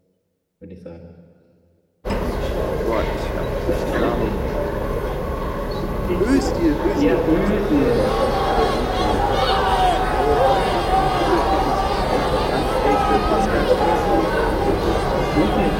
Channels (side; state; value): both; identical; correlation 1.00